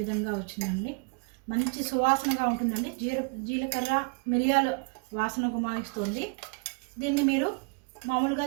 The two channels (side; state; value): left; quieter; 33.6 dB